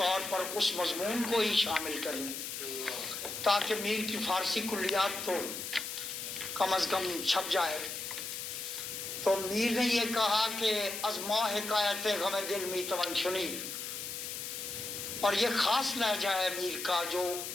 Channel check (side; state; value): left; noise; hiss, 6 dB below the sound